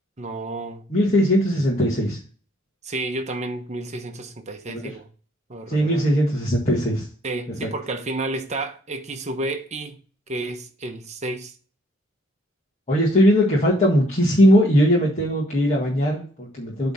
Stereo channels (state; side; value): normal; both; correlation 0.64